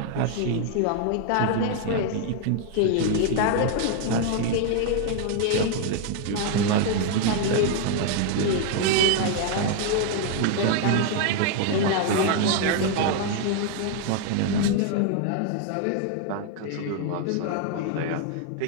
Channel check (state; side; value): different; both; correlation 0.00